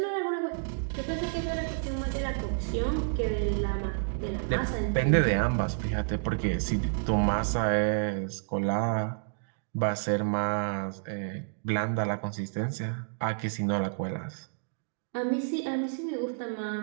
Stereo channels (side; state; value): left; silent; digital silence